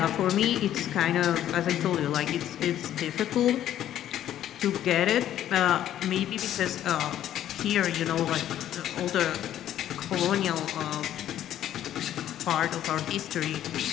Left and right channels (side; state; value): right; quieter; 11.6 dB